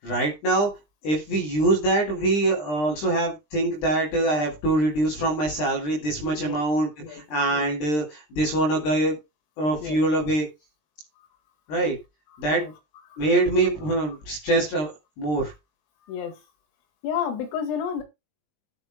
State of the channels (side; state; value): right; late; 20 ms